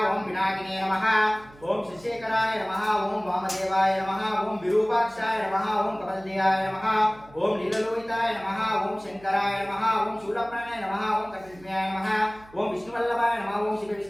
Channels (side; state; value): right; noise; hum, 24 dB below the sound